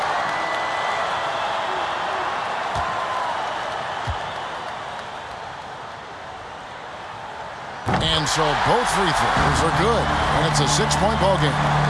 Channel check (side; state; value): both; identical; correlation 1.00